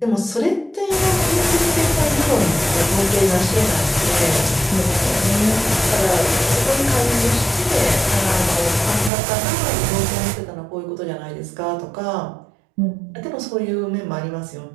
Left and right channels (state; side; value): drops out; left; at 9.1 s